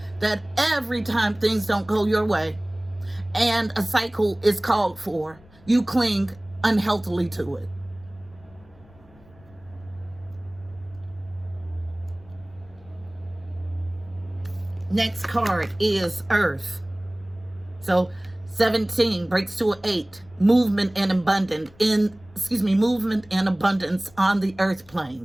That every time things don't go your way and a cycle is called for, you cling unhealthily to it. Next card is Earth. So 17 breaks to an 8. Movement and abundance on the earth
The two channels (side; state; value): left; noise; rumble, 26 dB below the sound